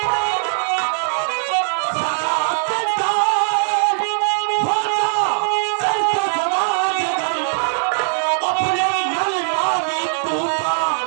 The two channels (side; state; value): left; silent; digital silence